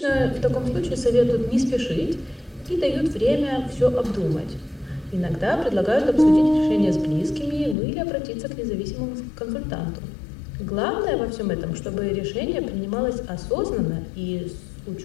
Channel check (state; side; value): drops out; right; at 7.8 s